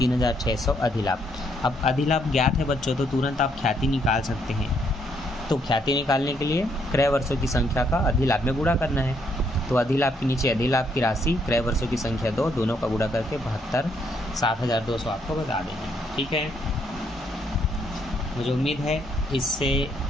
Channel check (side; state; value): both; normal; correlation 0.72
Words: अधिलाभ। अब अधिलाभ ज्ञात है बच्चों, तो तुरंत आप ख्याति निकाल सकते हैं। तो ख्याति निकालने के लिए क्रय वर्षों की संख्या का अधिलाभ में गुणा करना है। तो अधिलाभ के नीचे अधिलाभ की राशि, क्रय वर्षों की संख्या 2, दोनों का गुणा करके 72, 7,200 आपको बता देंगे, ठीक है। मुझे उम्मीद है इससे